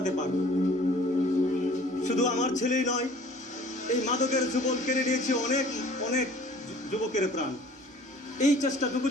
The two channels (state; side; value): normal; both; correlation 0.51